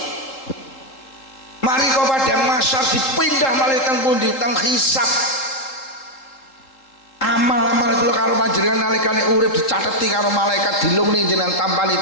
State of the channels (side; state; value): right; late; 3.8 ms